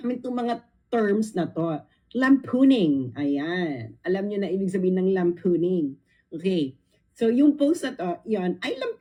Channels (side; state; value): both; identical; correlation 1.00